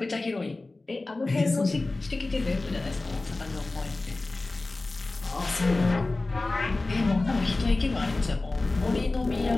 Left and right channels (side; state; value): right; quieter; 3.2 dB